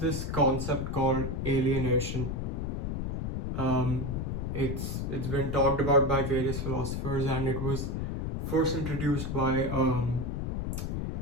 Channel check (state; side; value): noise; left; rumble, 2 dB below the sound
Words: concept called alienation. It's been talked about by various philosophers, and it was first introduced by